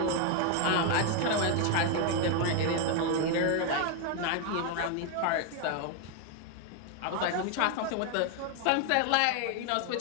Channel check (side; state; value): both; different; correlation 0.01